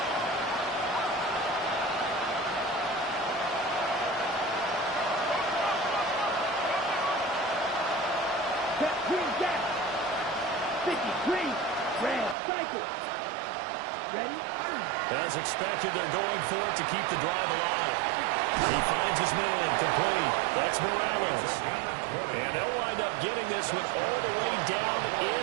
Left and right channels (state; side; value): drops out; left; at 12.4 s